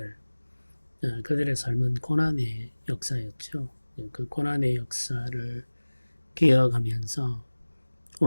그들의 삶은 고난의 역사였죠. 그 고난의 역사를 기억하면서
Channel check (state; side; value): inverted; both; correlation -1.00